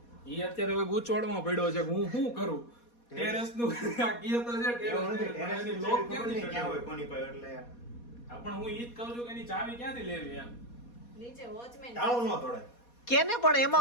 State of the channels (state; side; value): late; right; 4.2 ms